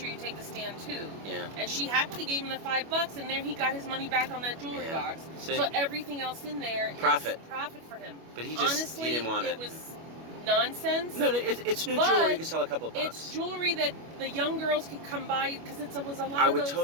you take the stand too. Yeah. And she happily gave him the $5, and there he got his money back on that jewelry box. See? So everything else in there is profit for him. But he just, honestly, he didn't want it. It was nonsense. No, it's new jewelry. You can sell a couple of bucks. It's jewelry that the young girls could come by, because it was a lot I of would those,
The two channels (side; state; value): left; late; 25 ms